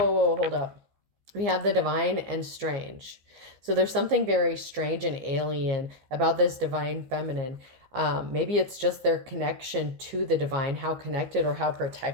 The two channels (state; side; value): late; left; 14 ms